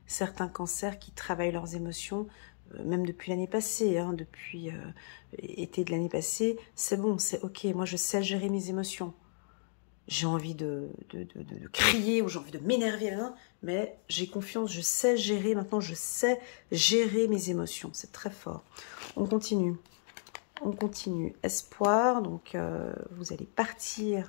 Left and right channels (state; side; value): silent; right; digital silence